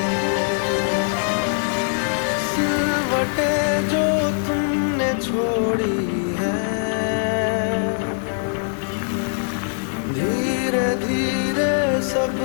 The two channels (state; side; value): silent; right; digital silence